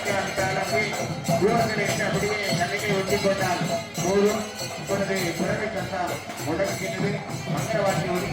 அப்படியே தூரத்தில் அப்படியே கண்ணிக்கை ஒட்டிக் கொண்டால் போதும். இப்பொழுது புறவை சத்தம் முடங்குகின்றது. மந்திரவாசி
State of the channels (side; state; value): both; identical; correlation 1.00